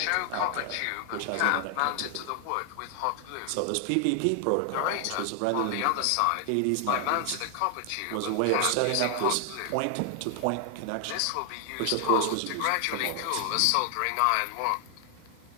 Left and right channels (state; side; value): different; both; correlation 0.00